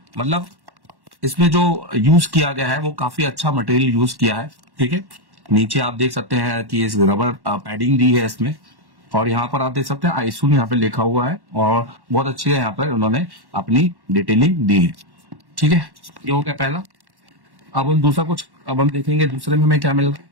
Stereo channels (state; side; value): late; left; 1.1 ms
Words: मतलब इसमें जो यूज किया गया है वो काफी अच्छा मटेरियल यूज किया है। ठीक है, नीचे आप देख सकते हैं कि इस रबर पैडिंग दी है इसमें। और यहाँ पर आप देख सकते हैं आईसून यहाँ पे लिखा हुआ है और बहुत अच्छी है, यहाँ पर उन्होंने अपनी डिटेलिंग दी है। ठीक है, ये हो गया पहला। अब हम दूसरा कुछ हम देखेंगे दूसरे में हमें क्या मिल रहा